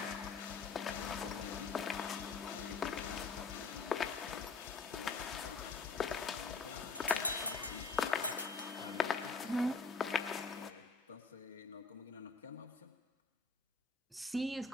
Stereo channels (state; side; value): quieter; right; 4.5 dB